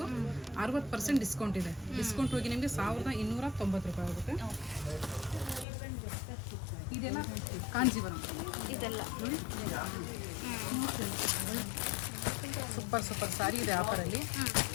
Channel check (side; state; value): right; drops out; at 5.7 s